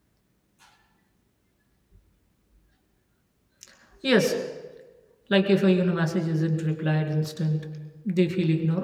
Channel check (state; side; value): identical; both; correlation 1.00